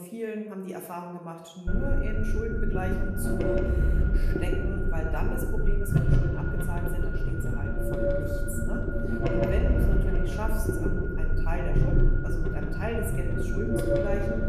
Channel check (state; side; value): identical; both; correlation 1.00